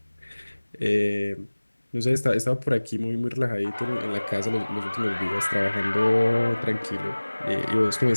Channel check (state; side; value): inverted; both; correlation -1.00